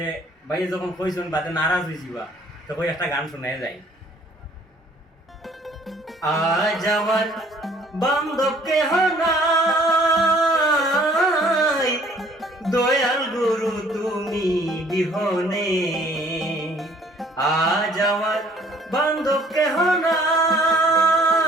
ভাই যখন কইছেন বাদে নারাজ হয়েছিবা তো কই একটা গান শুনে যাই। আজ আমার বান্ধব কেহ নাই, দয়াল গুরু তুমি বিহনে। আজ আমার বান্ধব কেহ নাই,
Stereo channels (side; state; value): both; normal; correlation 0.57